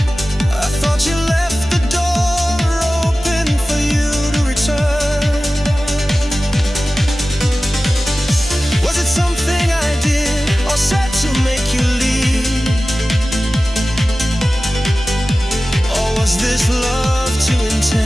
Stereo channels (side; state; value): both; normal; correlation 0.96